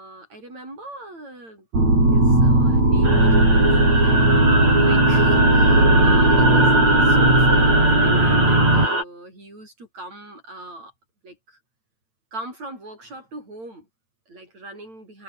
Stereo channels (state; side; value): late; left; 8.9 ms